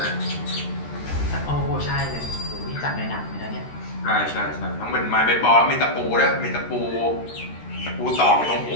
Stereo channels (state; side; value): late; right; 13 ms